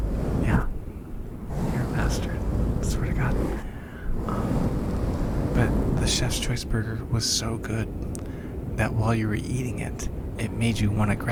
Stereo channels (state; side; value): identical; both; correlation 1.00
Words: Yeah, you're a bastard, I swear to God. But the Chef's Choice burger was so good that while you were eating it, it made you want to